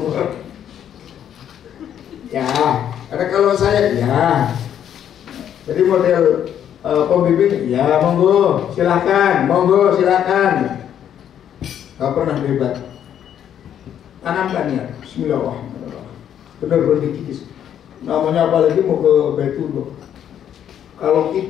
Ya, karena kalau saya ya, jadi model pembimbing ya monggo silakan. Gak pernah debat. Tanamkan ya, bismillahirrahmanirrahim. Benar-benar dikikis. Namanya apalagi mau ke Baitullah. Kalau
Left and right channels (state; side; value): quieter; right; 9.7 dB